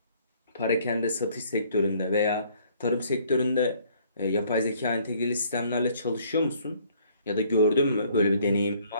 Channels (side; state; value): both; inverted; correlation -0.61